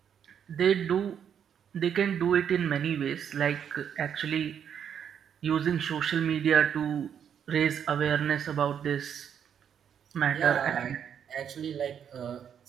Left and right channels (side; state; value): left; quieter; 8.4 dB